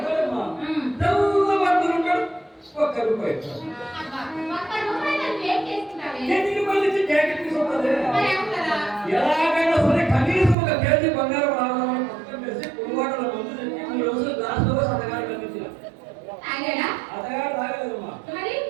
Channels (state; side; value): drops out; left; at 10.6 s